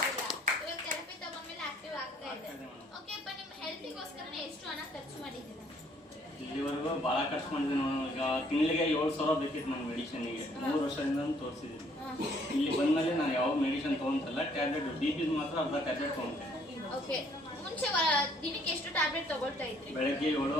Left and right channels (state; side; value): normal; both; correlation 0.63